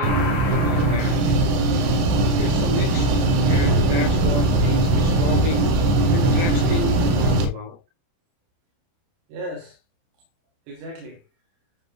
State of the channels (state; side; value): late; left; 30 ms